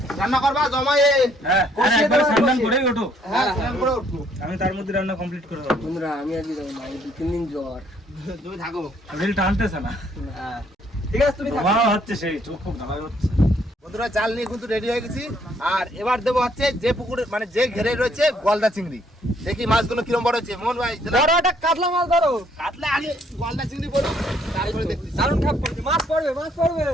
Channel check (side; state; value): both; normal; correlation 0.66